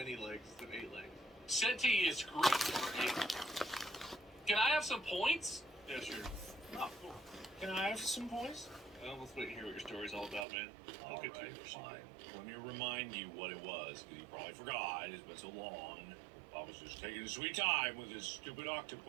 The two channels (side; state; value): left; drops out; at 10.5 s